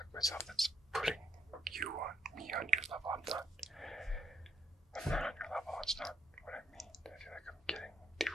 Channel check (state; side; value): normal; both; correlation 0.70